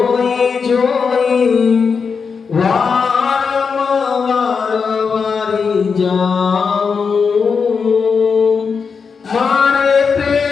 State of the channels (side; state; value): right; quieter; 5.6 dB